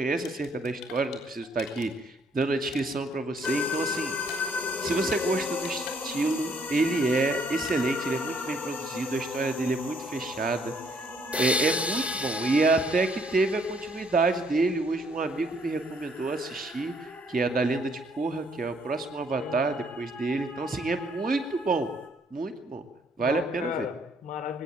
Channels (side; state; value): both; normal; correlation 0.66